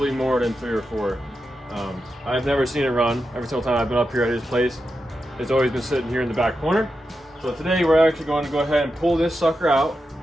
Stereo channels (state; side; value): normal; both; correlation 0.88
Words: more than 3 or 4. I've never seen it run. Every single time I've been up here at his place, it's always been sitting here in the back corner. So today we're actually going to go ahead and pull this sucker out,